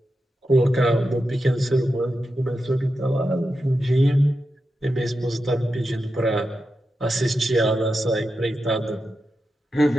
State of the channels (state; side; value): normal; both; correlation 0.89